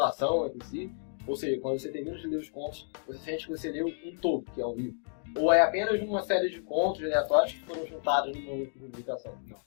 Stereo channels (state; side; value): silent; right; 57 dB below the other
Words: entre si, ou seja, quando você termina de ler os contos, você sente que você leu um todo, que é o livro. Ou é apenas uma série de contos aleatórios que foram juntados numa única publicação? Não,